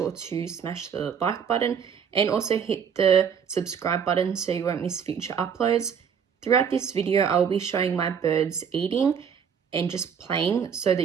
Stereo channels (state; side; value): quieter; left; 7.3 dB